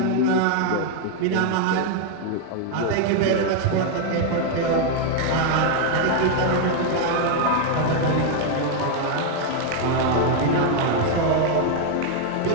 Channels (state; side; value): different; both; correlation 0.00